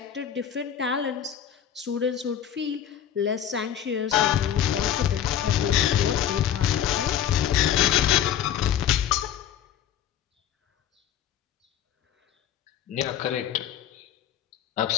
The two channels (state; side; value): quieter; right; 10.0 dB